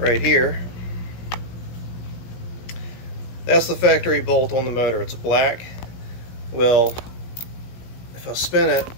here. That's the factory bolt on the motor. It's black. Well, if I spin it,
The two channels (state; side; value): late; right; 17 ms